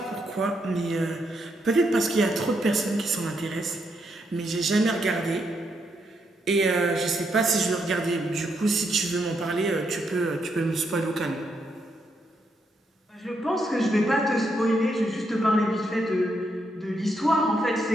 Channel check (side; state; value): both; normal; correlation 0.78